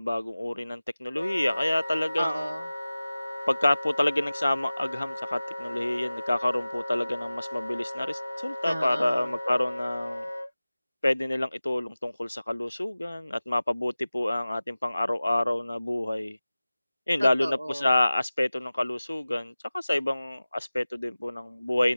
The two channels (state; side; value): inverted; both; correlation -0.97